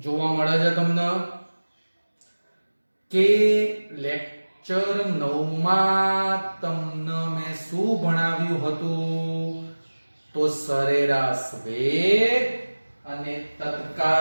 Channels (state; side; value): inverted; both; correlation -1.00